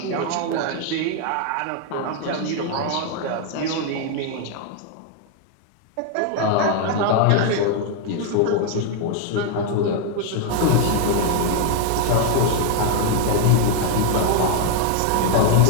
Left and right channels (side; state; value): both; different; correlation 0.01